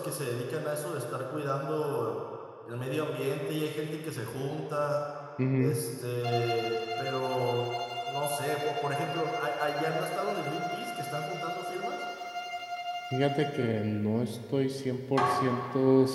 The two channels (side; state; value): both; identical; correlation 1.00